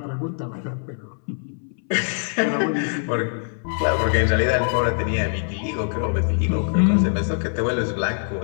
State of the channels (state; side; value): silent; right; 63 dB below the other